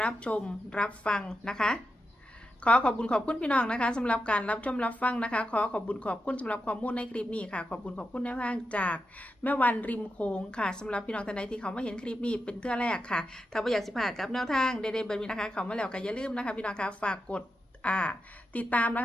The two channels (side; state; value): both; normal; correlation 0.88